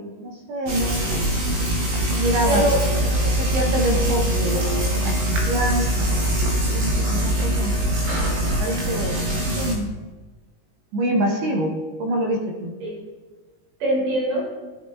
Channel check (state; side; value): late; left; 19 ms